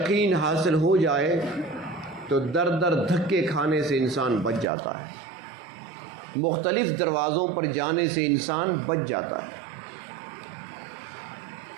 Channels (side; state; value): left; drops out; at 4.7 s